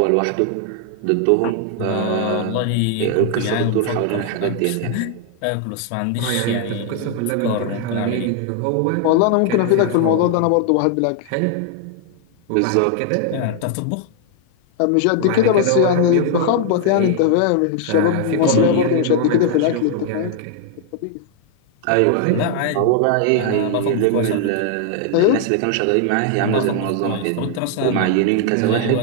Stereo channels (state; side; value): different; both; correlation 0.00